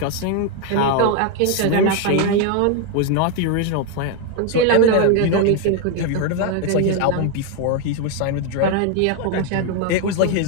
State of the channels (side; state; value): both; different; correlation 0.01